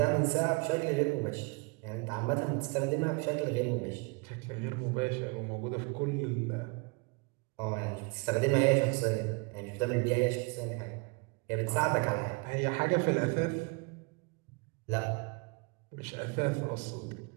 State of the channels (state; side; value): quieter; left; 30.4 dB